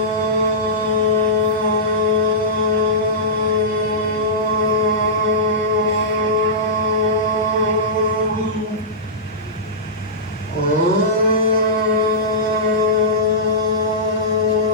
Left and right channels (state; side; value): normal; both; correlation -0.16